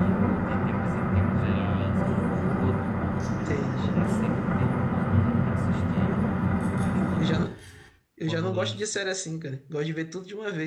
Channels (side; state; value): both; identical; correlation 1.00